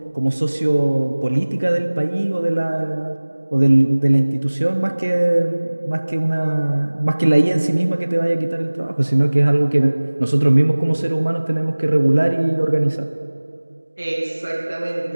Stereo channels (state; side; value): inverted; both; correlation -1.00